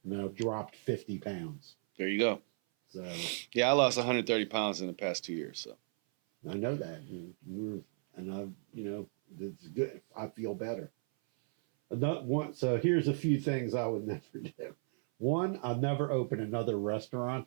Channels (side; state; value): left; silent; 54 dB below the other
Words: and I dropped 50 pounds. There you go. So yeah, I lost 130 pounds in the past 2 years. So I know that, and you know, it's good. I feel better. So here's a few things I would never do. 1, I'll never open another restaurant